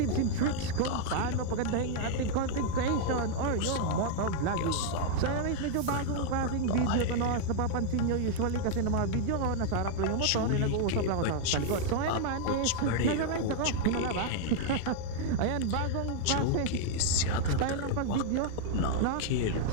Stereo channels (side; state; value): both; different; correlation 0.00